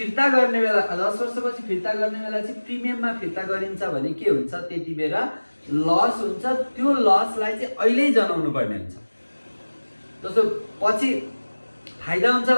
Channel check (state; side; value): inverted; both; correlation -1.00